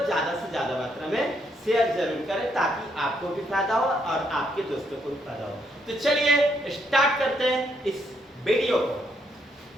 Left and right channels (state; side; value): normal; both; correlation 0.74